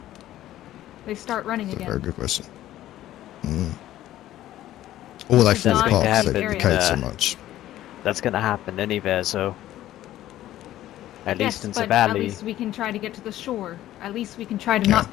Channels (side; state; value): right; quieter; 13.7 dB